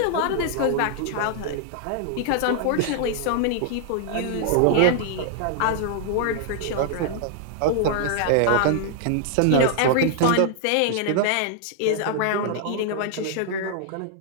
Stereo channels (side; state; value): both; different; correlation -0.01